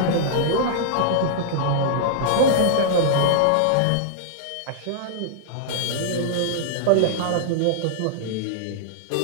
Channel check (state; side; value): different; both; correlation -0.02